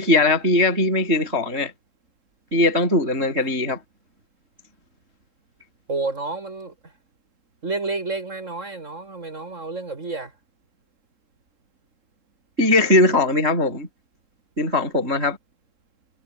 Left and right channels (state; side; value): late; left; 3.7 ms